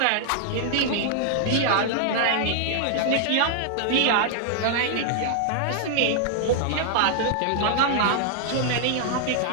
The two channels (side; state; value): both; different; correlation -0.01